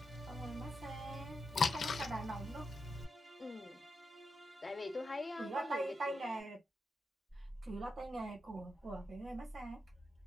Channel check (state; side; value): normal; both; correlation 0.86